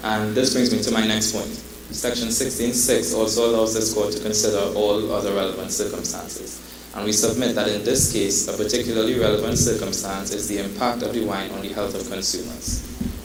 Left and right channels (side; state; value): both; identical; correlation 1.00